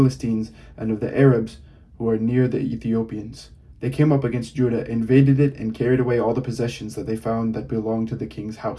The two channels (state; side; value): identical; both; correlation 1.00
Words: and of the Arabs who are near the Ethiopians. They came up against Judah, invaded it, and carried away all the possessions that they found that belonged to the king's